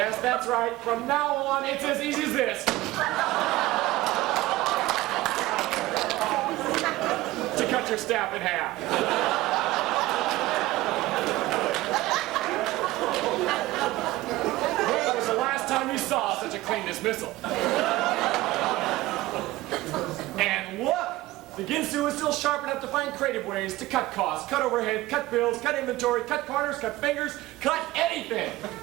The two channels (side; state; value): left; quieter; 17.8 dB